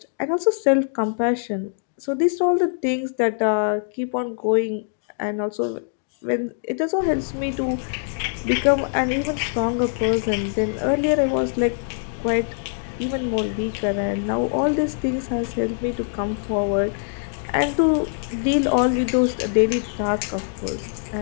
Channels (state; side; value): silent; right; digital silence